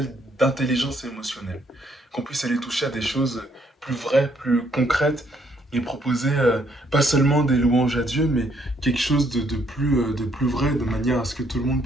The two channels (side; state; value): both; normal; correlation 0.69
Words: d'intelligence émotionnelle, qu'on puisse aller toucher à des choses plus vraies, plus concrètes, et proposer pas seulement des louanges à Dieu, mais quelque chose de plus vrai, de manière à ce que tout le monde